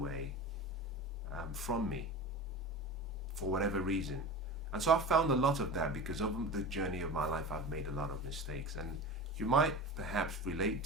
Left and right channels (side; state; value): both; normal; correlation 0.31